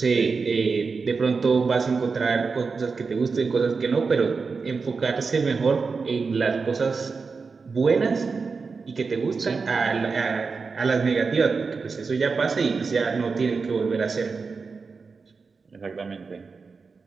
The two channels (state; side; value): quieter; left; 4.7 dB